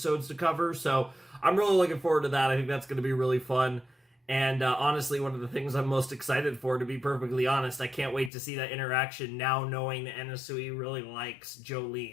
to cover. So I'm really looking forward to that. I think that's going to be really fun. And honestly, one of the things I'm most excited for, to be perfectly honest, I can't wait to see that interaction now, knowing that Anasui really likes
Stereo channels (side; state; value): right; drops out; at 8.3 s